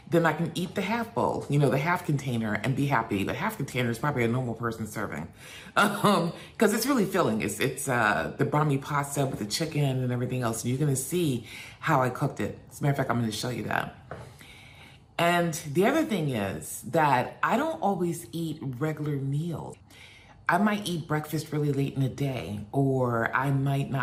then I can eat the half bowl, you know, the half container, and be happy. The half container is probably a normal person serving, because it's really filling. It's the bumpy pasta with the chicken and everything else. And you're gonna see how I cooked it. As a matter of fact, I'm gonna show you that. And the other thing is that I don't always eat regular meals. I might eat breakfast really late in the day, or I might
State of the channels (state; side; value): identical; both; correlation 1.00